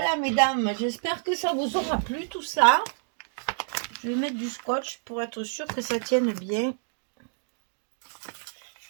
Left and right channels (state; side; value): silent; left; digital silence